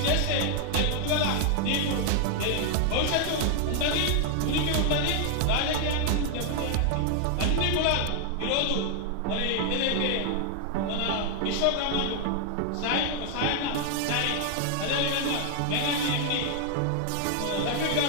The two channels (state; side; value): different; both; correlation 0.00